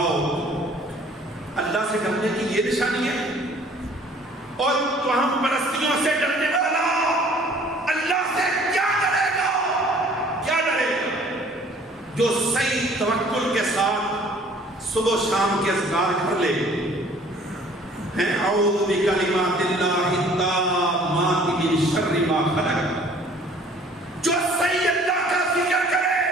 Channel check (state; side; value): normal; both; correlation 0.54